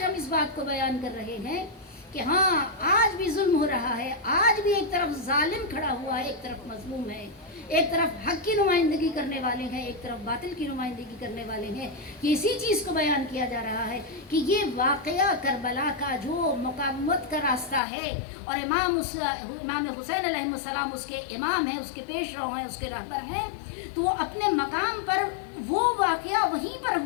ہم اس بات کو بیان کر رہے ہیں کہ ہاں آج بھی ظلم ہو رہا ہے، آج بھی ایک طرف ظالم کھڑا ہوا ہے، ایک طرف مظلوم ہے، ایک طرف حق کی نمائندگی کرنے والے ہیں، ایک طرف باطل کی نمائندگی کرنے والے ہیں، یہ اسی چیز کو بیان کیا جا رہا ہے کہ یہ واقعہ کربلا کا جو مقاومت کا راستہ ہے، اور امام حسین علیہ السلام اس کے امام ہیں، اس کے پیش رو ہیں، اس کے رہبر ہیں، تو وہ اپنے مقام پر وہ واقعہ وہیں پر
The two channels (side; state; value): right; drops out; at 17.8 s